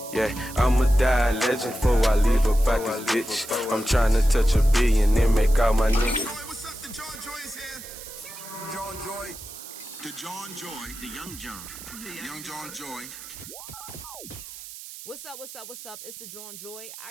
Yeah, I'ma die a legend before I leave up out this bitch. I'm tryna touch $1 billion and make all my niggas. What's up? The Jawn Joi is here. Jawn Joi. The Jawn Joi. The young John. The young Jawn Joi. What's up? It's the Jawn Joi.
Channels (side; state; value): right; noise; hiss, 13 dB below the sound